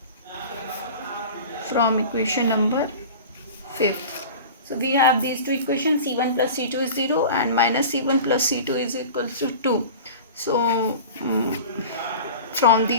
from equation number 5th. So we have these two equations, c1 plus c2 is 0 and minus c1 plus c2 is equals to 2. So from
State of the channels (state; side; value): inverted; both; correlation -0.36